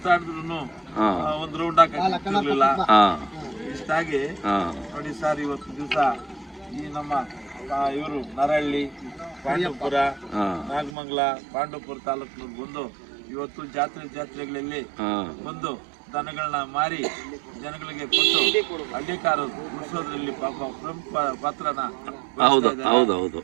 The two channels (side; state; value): left; drops out; at 11.0 s